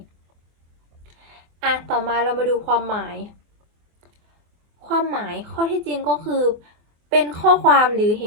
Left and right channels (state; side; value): late; left; 24 ms